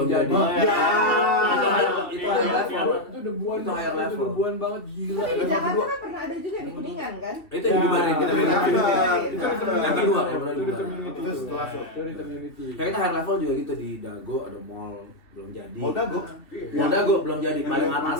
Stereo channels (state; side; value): late; right; 2.9 ms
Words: jadi. jadi. Itu high level. Itu debuan, Itu higher level. itu debuan banget gila. Tapi di Jakarta kan pernah ada juga di Kuningan kan? itu yang dibubarin kita Itu bilang. yang Yang kedua ya, Itu di community. Itu setelah Itu di community. Kayak kita high level juga gitu di Dago ada mall belum jadi. Mau dago? Mall Dago belum jadi. Paling